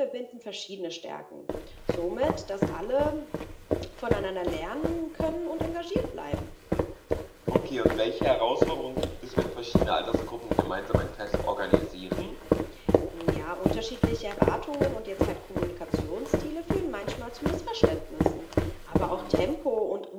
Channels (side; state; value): both; identical; correlation 1.00